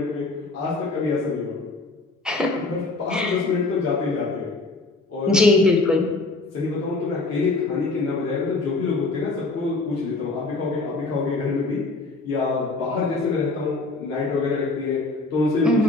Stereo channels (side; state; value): right; quieter; 3.3 dB